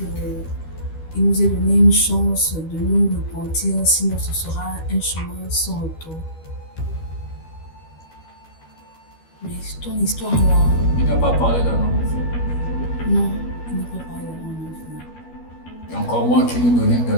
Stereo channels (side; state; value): right; late; 12 ms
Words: nous a donné une chance de nous repentir, sinon ce sera un chemin sans retour. Mais ton histoire là... Il n'a pas parlé d'un homme. Non, il n'a pas parlé d'un homme. Et encore Crois-moi qu'il nous donnait une